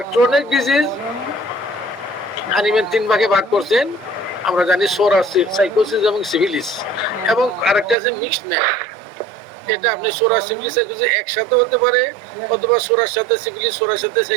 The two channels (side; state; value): left; drops out; at 8.0 s